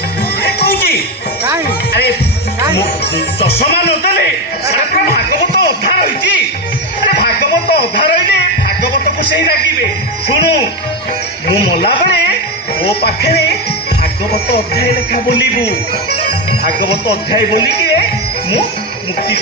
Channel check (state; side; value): normal; both; correlation 0.13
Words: କହୁଛି ଆରେ ଚଷମା ନଦେଲେ ସାରା ଭାଗବତ ଅଧା ରହିଛି। ଆରେ ଭାଗବତ ଅଧା ରହିଲେ ଭାଗବତକୁ ସେଇ ରାଗିବେ। ଶୁଣୁ ମୁଁ ମଲାବେଳେ ମୋ ପାଖରେ ଭାଗବତ ଅଧ୍ୟାୟ ଲେଖା ବୋଲିବୁ। ଭାଗବତ ଅଧ୍ୟାୟ ବୋଲିକି ମୁଁ ମୁକ୍ତି